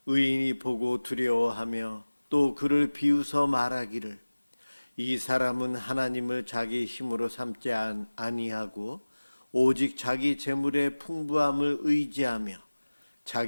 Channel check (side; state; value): both; inverted; correlation -1.00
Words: 의인이 보고 두려워하며 또 그를 비웃어 말하기를 이 사람은 하나님을 자기 힘으로 삼지 아니하고 오직 자기 재물의 풍부함을 의지하며